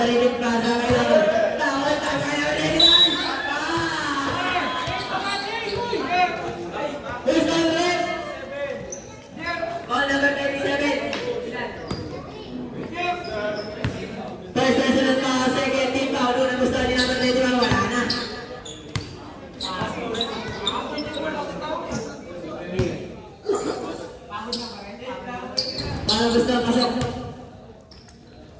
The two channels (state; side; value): identical; both; correlation 1.00